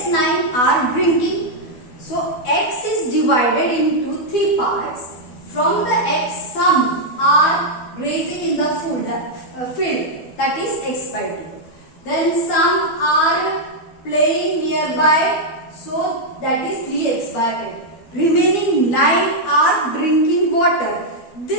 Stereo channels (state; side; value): late; right; 12 ms